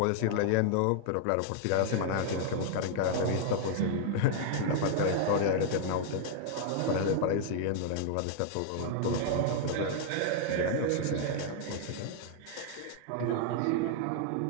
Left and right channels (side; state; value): both; different; correlation -0.01